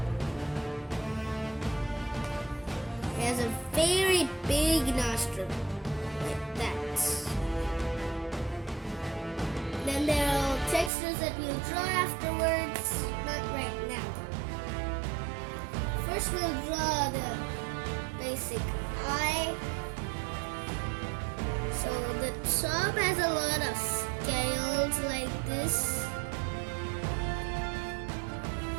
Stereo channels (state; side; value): drops out; left; at 10.9 s